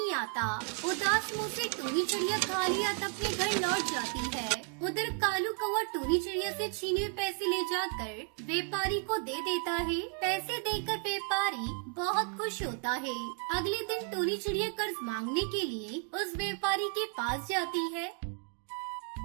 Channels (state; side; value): quieter; left; 39.2 dB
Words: आता। उदास मुंह से टूनी चिड़िया खाली हाथ अपने घर लौट जाती है। उधर कालू कौवा टूनी चिड़िया से छीने हुए पैसे ले जाकर व्यापारी को दे देता है। पैसे देकर व्यापारी बहुत खुश होता है। अगले दिन टूनी चिड़िया कर्ज मांगने के लिए उस व्यापारी के पास जाती है।